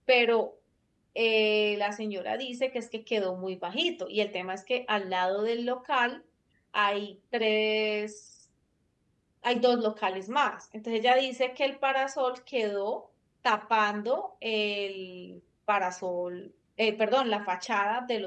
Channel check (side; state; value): both; identical; correlation 1.00